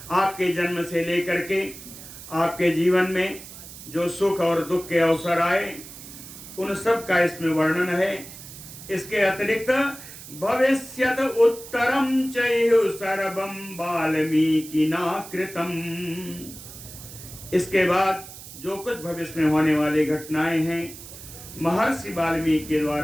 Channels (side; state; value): right; noise; hiss, 15 dB below the sound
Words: आपके जन्म से लेकर के आपके जीवन में जो सुख और दुख के अवसर आए उन सब का इसमें वर्णन है। इसके अतिरिक्त भविष्यत उत्तरम चैह सर्वम वाल्मीकिना कृतम। इसके बाद जो कुछ भविष्य में होने वाली घटनाएं हैं महर्षि वाल्मीकि के